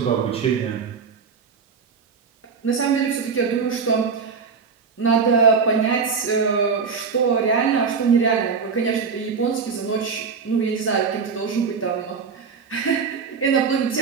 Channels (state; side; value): quieter; left; 5.6 dB